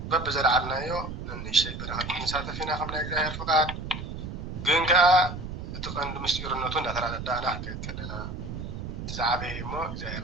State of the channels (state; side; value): noise; right; rumble, 7 dB below the sound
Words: በብዘለዓልናዮ ንእሽተይ በረኸት ክንሳተፍ ኢና ከም ናይ እግዚአብሔር ፍቃድ። ግን ከዓ እቲ ቀንዲ ምስጢርነቱ እንዳተረዳእና ክንከይድ ከለና እቲ ዝዓበየ እሞ እግዚአብሔር